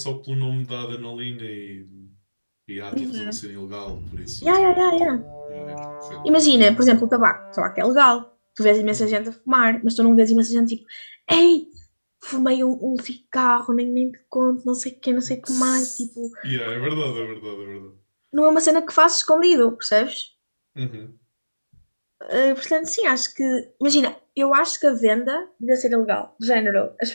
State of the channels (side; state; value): both; inverted; correlation -1.00